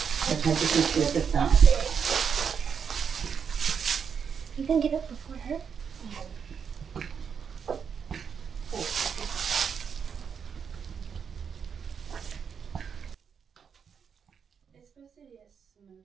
Sometimes you can feel the thumb. You can get up before her. It's supposed to be a smoky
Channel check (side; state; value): left; quieter; 6.9 dB